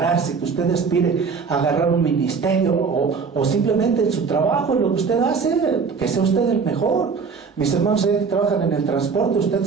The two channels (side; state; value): left; quieter; 5.4 dB